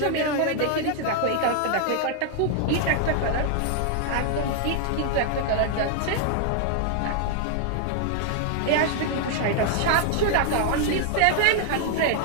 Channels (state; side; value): different; both; correlation 0.00